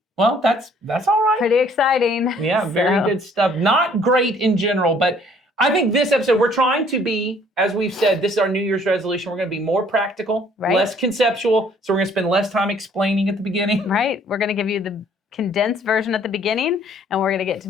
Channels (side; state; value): both; normal; correlation 0.59